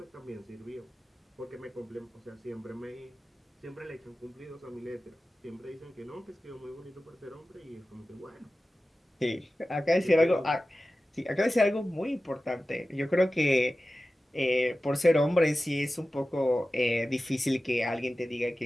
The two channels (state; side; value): normal; both; correlation 0.95